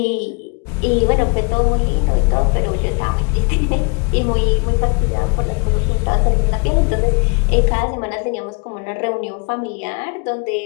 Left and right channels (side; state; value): right; quieter; 34.0 dB